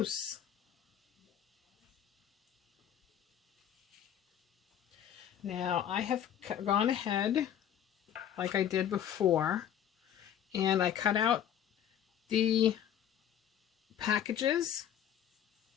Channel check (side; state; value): right; quieter; 9.9 dB